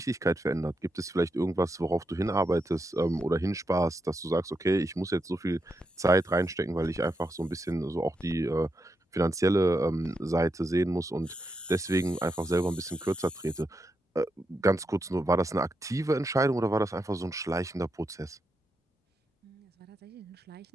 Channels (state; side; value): normal; both; correlation 0.84